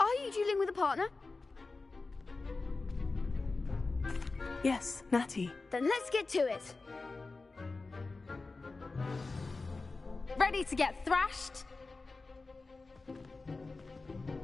you dueling with a partner? Yes, Natty. Then let's get to it. Ready to get thrashed?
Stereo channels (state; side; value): quieter; right; 3.7 dB